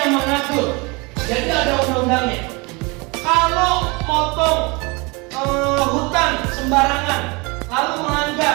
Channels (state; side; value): quieter; left; 27.6 dB